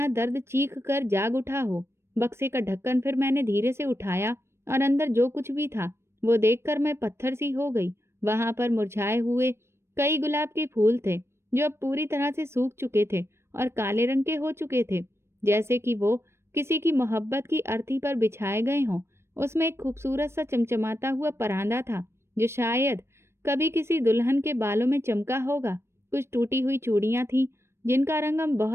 दर्द चीख कर जाग उठा हो। बक्से का ढक्कन फिर मैंने धीरे से उठाया और अंदर जो कुछ भी था वो देखकर मैं पत्थर सी हो गई। वहां पर मुरझाए हुए कई गुलाब के फूल थे जो अब पूरी तरह से सूख चुके थे और काले रंग के हो चुके थे, जैसे कि वो किसी की मोहब्बत की अर्थी पर बिछाए गए हों। उसमें एक खूबसूरत सा चमचमाता हुआ परांदा था जो शायद कभी किसी दुल्हन के बालों में चमका होगा। कुछ टूटी हुई चूड़ियां थीं जिनका रंग अब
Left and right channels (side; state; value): left; late; 0.12 ms